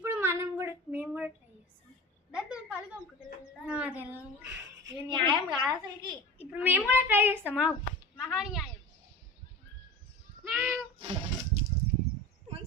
మేము కూడా ట్రై చేస్తాం. దాంతో కలుగు న్యాయం కాదు అసలుకి. ఇప్పుడు మేము కూడా ట్రై చేస్తామా? మహాన్యాయం.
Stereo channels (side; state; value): both; normal; correlation 0.33